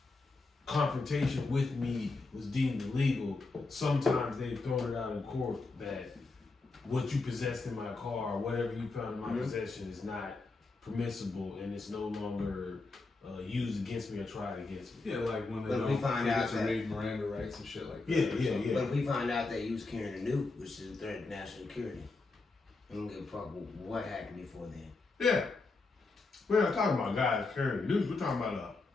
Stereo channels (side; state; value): right; quieter; 3.6 dB